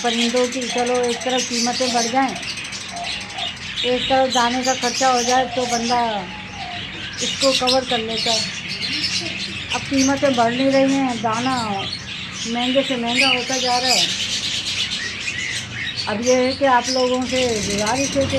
پرندوں کی. چلو ایک طرف قیمتیں بڑھ جائیں، ایک طرف دانے کا خرچہ ہو جائے تو بندہ اس کو کور کر لیتا ہے. اب قیمتیں بڑھ نہیں رہی ہیں، دانہ مہنگے سے مہنگا ہوتا جا رہا ہے. اب یہ ہے کہ آپ لوگوں سے گزارش ہے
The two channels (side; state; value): both; identical; correlation 1.00